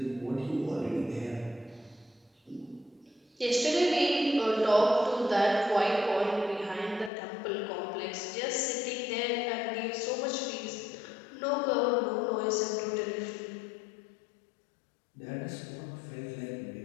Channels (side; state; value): right; drops out; at 7.1 s